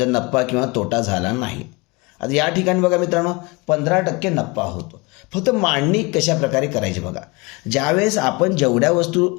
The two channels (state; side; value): quieter; right; 26.1 dB